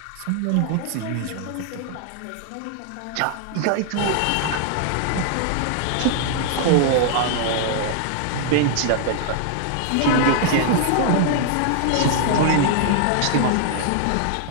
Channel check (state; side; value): different; both; correlation -0.01